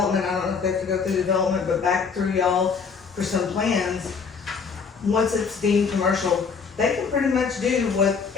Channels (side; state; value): right; quieter; 5.7 dB